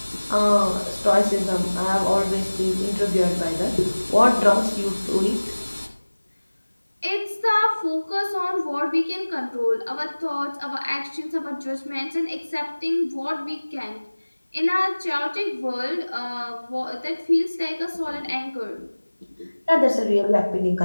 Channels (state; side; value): inverted; both; correlation -1.00